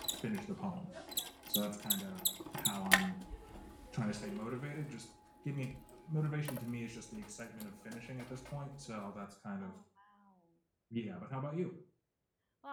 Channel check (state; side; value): identical; both; correlation 1.00